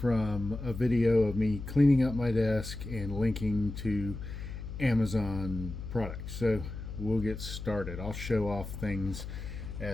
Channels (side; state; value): left; noise; hum, 8 dB below the sound